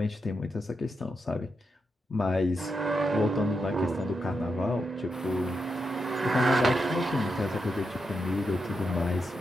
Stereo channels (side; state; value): both; normal; correlation 0.85